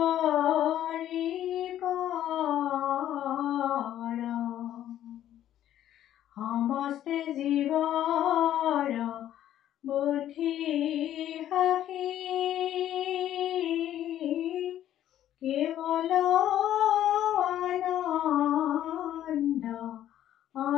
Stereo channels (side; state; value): right; quieter; 11.8 dB